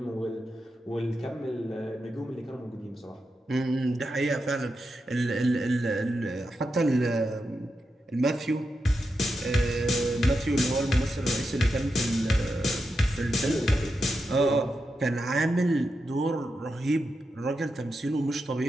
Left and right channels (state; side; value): normal; both; correlation 0.87